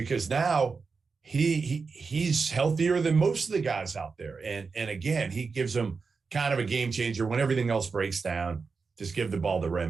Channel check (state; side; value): quieter; left; 4.8 dB